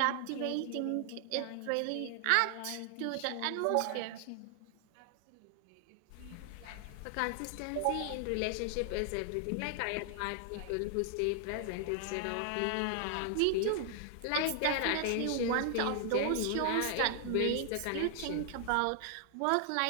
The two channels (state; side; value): different; both; correlation 0.00